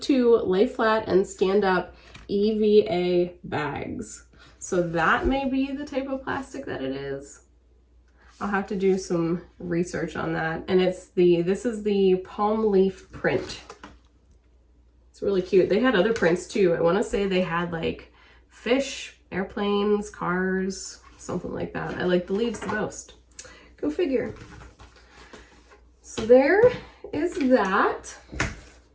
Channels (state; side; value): identical; both; correlation 1.00